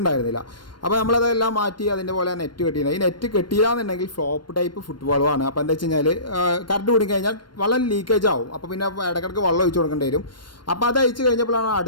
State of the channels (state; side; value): late; right; 0.72 ms